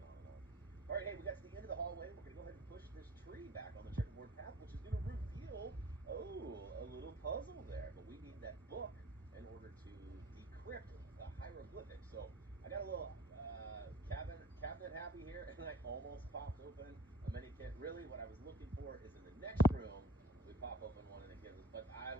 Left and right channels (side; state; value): both; normal; correlation 0.47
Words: on and on. All right, hey, we got to the end of the hallway. We're going to go ahead and push this tree back on the checkerboard path, which is going to reveal, a little puzzle there. But we need that book in order to decrypt the hieroglyphics. So I got a little cabinet happy here, and I almost popped open a mini kit. Really, what I was looking for is in the next room. We pop open one and it gives us, but I